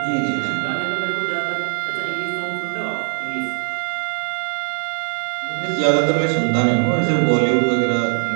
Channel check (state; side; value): silent; left; 63 dB below the other